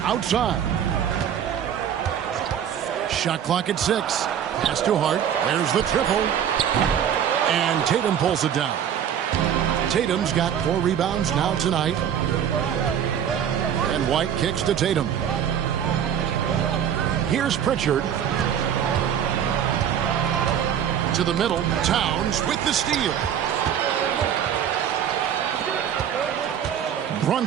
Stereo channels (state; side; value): quieter; left; 9.0 dB